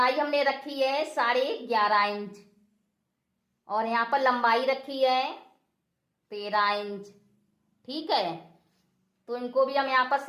हमने रखी है 11.5 इंच और यहाँ पर लंबाई रखी है 13 इंच, ठीक है। तो इनको भी हम यहाँ पर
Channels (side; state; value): both; identical; correlation 1.00